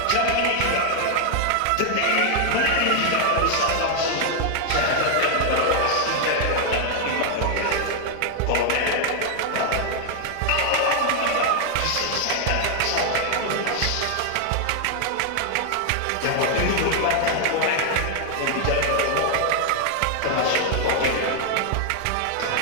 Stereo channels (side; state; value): both; different; correlation 0.00